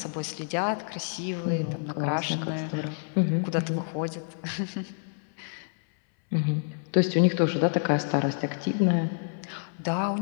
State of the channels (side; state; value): right; silent; 59 dB below the other